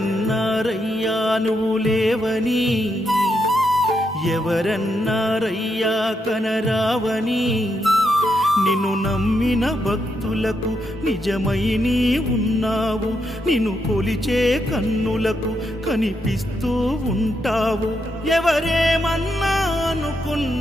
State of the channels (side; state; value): both; normal; correlation 0.81